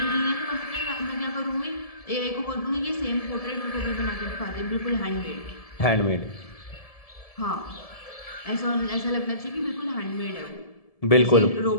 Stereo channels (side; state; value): right; late; 1.7 ms